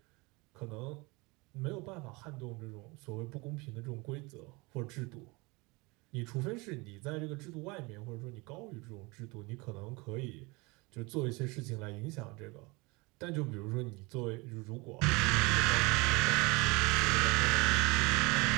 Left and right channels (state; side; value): quieter; left; 25.7 dB